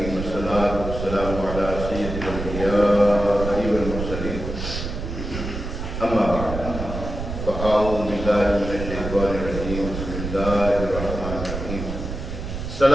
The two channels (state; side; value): noise; right; rumble, 6 dB below the sound